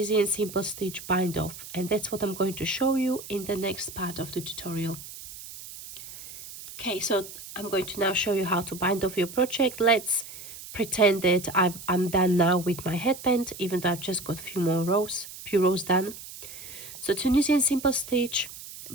simple stitch bind off. And that's what I'm going to show you in the next part of the tutorial. Okay, so I'm going to now show you how to bind off your project. Let's pretend that I'm done now with my headband, even though I've just got few rows done. So Tunisian simple stitch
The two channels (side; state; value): right; noise; hiss, 14 dB below the sound